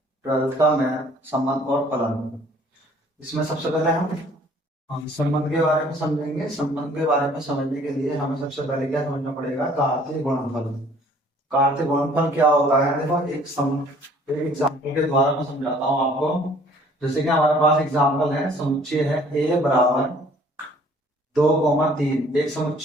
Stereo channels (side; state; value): both; normal; correlation 0.56